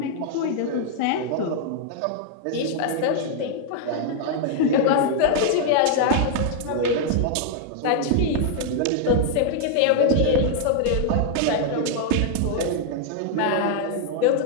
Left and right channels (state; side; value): different; both; correlation -0.01